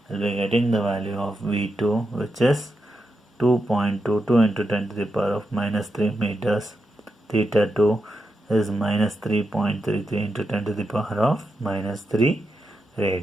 I will be getting the value of V2, which is 2.22 into 10 to the power of minus 3 meters. Theta 2 is minus 3.33 into 10 to the power of minus 3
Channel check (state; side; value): normal; both; correlation 0.86